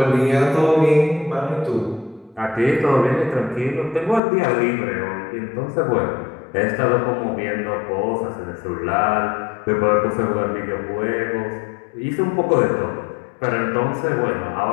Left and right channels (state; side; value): drops out; right; at 4.2 s